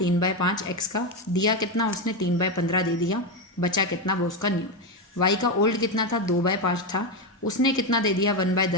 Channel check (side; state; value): both; normal; correlation 0.10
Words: X का, दिया कितना उसने 3/15 दे दिया, बचा कितना वो उसका न्यू। Y का ओल्ड कितना था 2/5 था, उसने कितना दे दिया